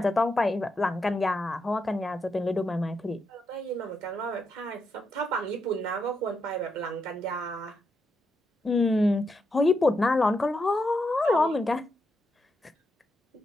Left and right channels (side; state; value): both; normal; correlation 0.83